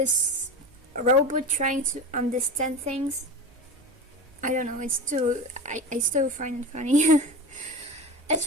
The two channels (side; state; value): both; normal; correlation 0.28